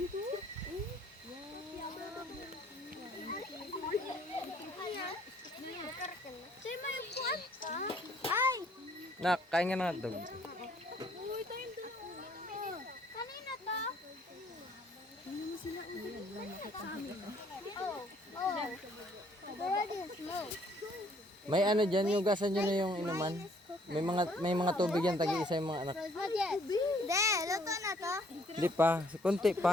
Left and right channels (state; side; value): normal; both; correlation 0.63